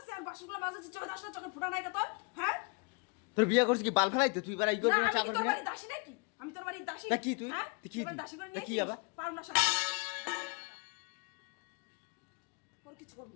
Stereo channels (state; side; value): quieter; right; 32.5 dB